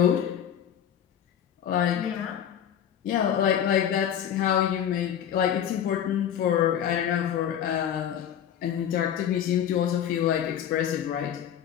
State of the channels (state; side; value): quieter; right; 9.5 dB